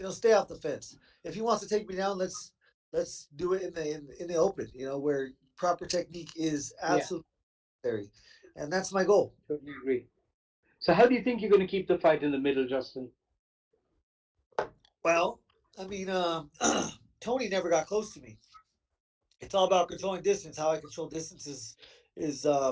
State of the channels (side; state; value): both; identical; correlation 1.00